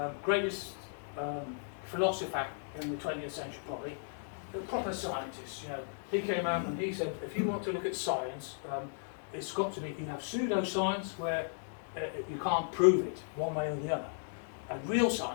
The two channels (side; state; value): right; silent; digital silence